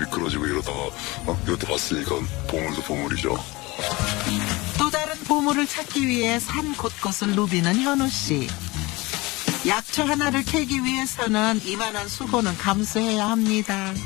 이러다가 이것도 봤으니까 보물도 보물이죠. 또 다른 보물을 찾기 위해 산 곳곳을 누비는 현우 씨. 약초 하나를 캐기 위해서는 이만한 수고는 감수해야 합니다.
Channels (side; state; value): right; quieter; 22.6 dB